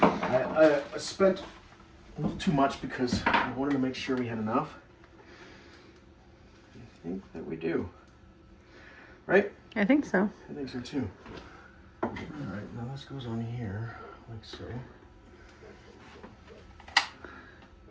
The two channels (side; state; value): both; identical; correlation 1.00